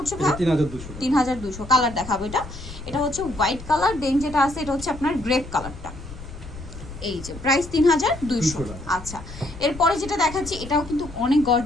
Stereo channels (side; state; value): left; noise; rumble, 13 dB below the sound